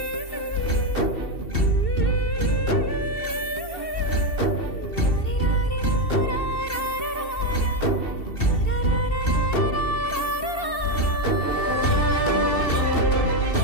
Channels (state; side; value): late; right; 2.7 ms